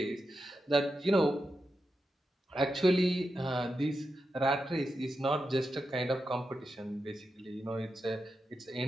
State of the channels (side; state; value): both; normal; correlation 0.88